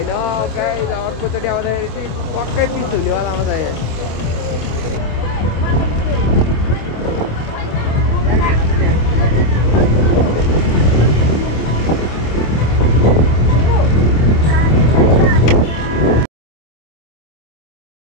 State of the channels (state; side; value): late; right; 26 ms